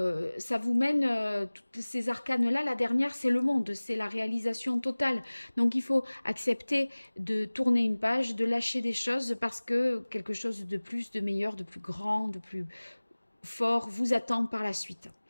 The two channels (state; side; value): inverted; both; correlation -1.00